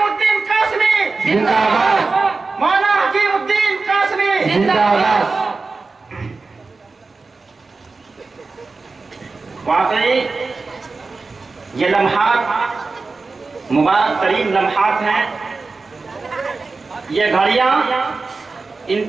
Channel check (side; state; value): left; quieter; 4.0 dB